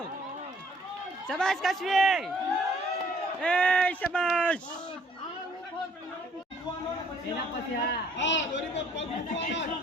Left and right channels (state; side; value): normal; both; correlation 0.60